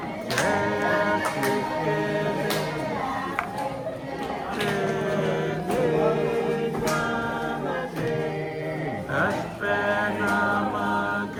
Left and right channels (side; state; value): both; identical; correlation 1.00